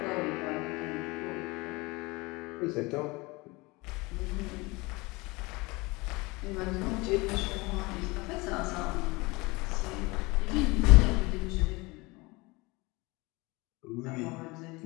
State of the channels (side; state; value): right; quieter; 24.2 dB